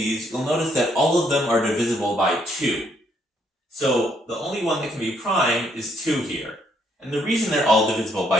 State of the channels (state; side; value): normal; both; correlation 0.71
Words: you'll notice that all of them are divisible by 2. So the only one that can be prime is 2 here. And the reason they're all divisible